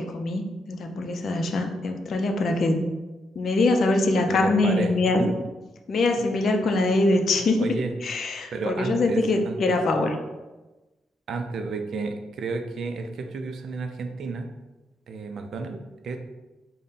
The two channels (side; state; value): both; normal; correlation 0.78